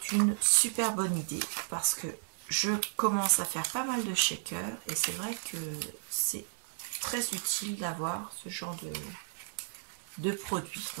une super bonne idée parce que je commence à faire pas mal de shakers et c'est vrai que c'est très utile d'avoir ce genre de produit.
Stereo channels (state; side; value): silent; left; digital silence